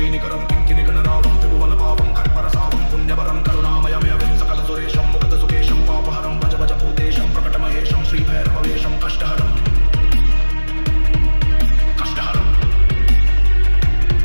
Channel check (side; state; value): both; inverted; correlation -1.00